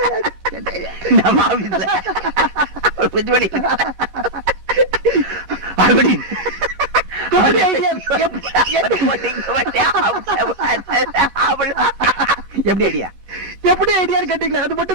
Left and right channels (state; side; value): late; left; 15 ms